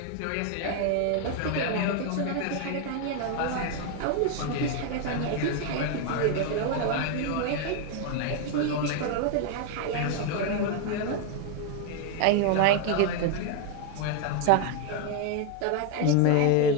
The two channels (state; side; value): different; both; correlation 0.01